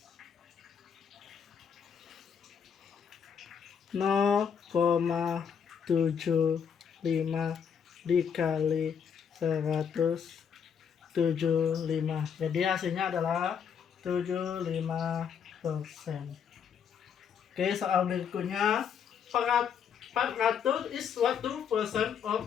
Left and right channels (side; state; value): right; quieter; 7.4 dB